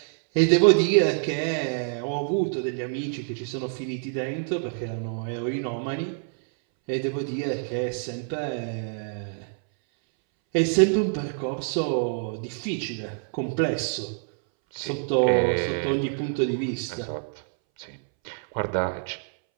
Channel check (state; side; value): silent; left; 61 dB below the other